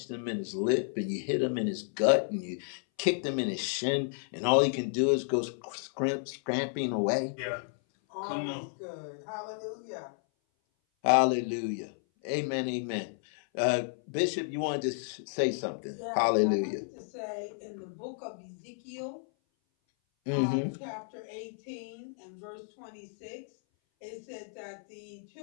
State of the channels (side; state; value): right; silent; 56 dB below the other